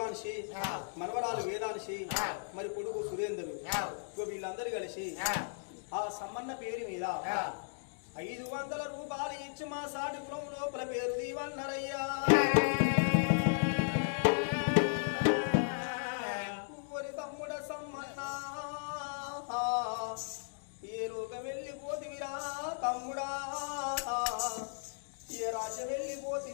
మనవరాలు వేదాంశి, మరి కొడుకు సురేంద్రుడు, వీళ్ళందరూ కలిసి ఆ సమ్మన్న పేరు మీద 500 రూపాయలు ఇచ్చి మా సాటి కులం లోపల పేరు దీవన్నరయ్యా. తమ్ముడ సమ్మన్న ఏ లోకం వెళ్ళిపోతివిరా తమ్ముడా, ఏ రాజ్యం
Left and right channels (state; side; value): silent; right; digital silence